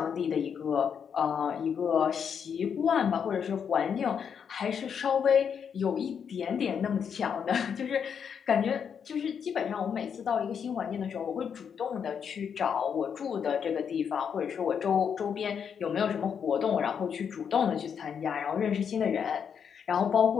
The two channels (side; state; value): right; quieter; 7.3 dB